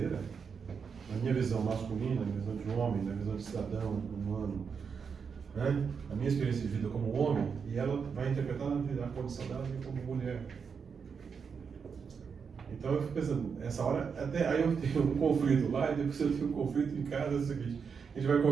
na minha visão masculina, na minha visão de homem, na visão de cidadão, humano, né? A minha experiência de vida como homem, e ela vai interpretar a condição dela como mulher. Então eu fico pensando, essa hora, até aí eu tenho um conflito lá, e depois eu tenho um conflito em casa, é o seguinte, a gente vai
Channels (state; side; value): quieter; left; 6.1 dB